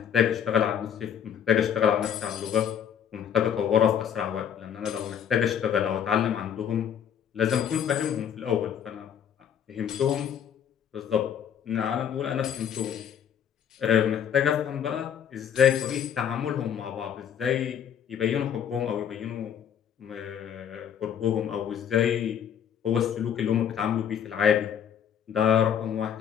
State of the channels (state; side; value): quieter; right; 8.8 dB